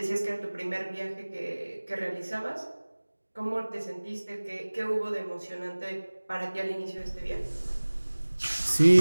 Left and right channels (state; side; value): inverted; both; correlation -1.00